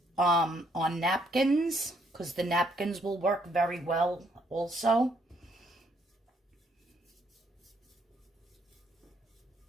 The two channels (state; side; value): normal; both; correlation 0.70